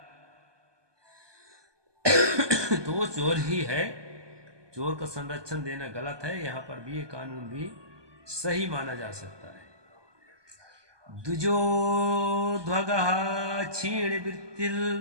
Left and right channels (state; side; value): late; left; 1.2 ms